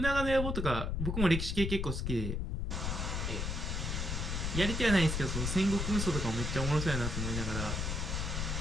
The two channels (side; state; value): left; noise; rumble, 1 dB below the sound